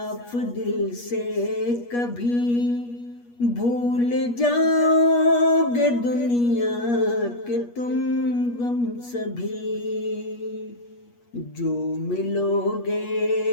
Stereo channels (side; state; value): right; late; 8.4 ms